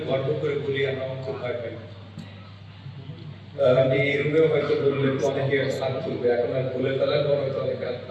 গর্ব করে বলি আমরা অঙ্ক ভয় পাই। আমি এই রুমেও হয়তো বললে তো অনেকে হাত তুলবে, এখন আর বলে ফেলার পর হয়তো অনেকে হাত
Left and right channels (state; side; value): identical; both; correlation 1.00